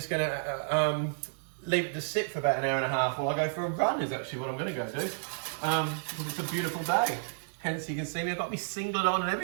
going to leave it to sit for about an hour and a half while I go for a run. Is actually what I'm going to go do. Because it's a beautiful day. Hence, you can see me. I've got my singlet on and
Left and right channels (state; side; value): silent; left; digital silence